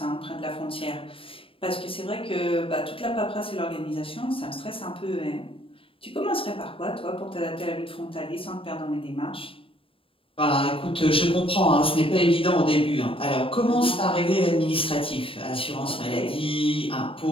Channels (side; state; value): right; late; 0.26 ms